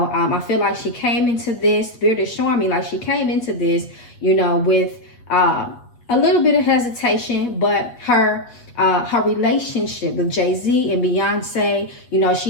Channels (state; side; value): late; right; 8.3 ms